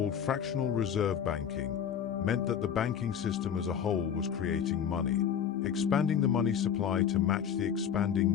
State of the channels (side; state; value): right; quieter; 8.4 dB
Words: fractional reserve banking, meant that the banking system as a whole was creating money, expanding the money supply to match the